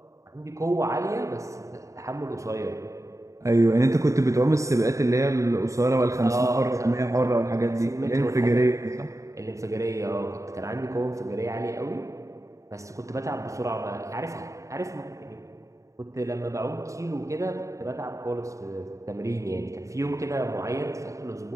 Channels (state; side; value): late; left; 0.15 ms